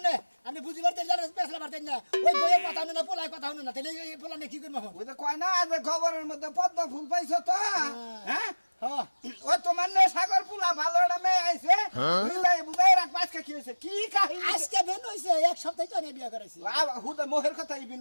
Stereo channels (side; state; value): both; inverted; correlation -1.00